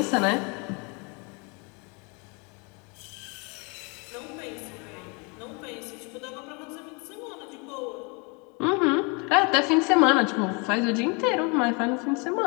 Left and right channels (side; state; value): right; quieter; 31.8 dB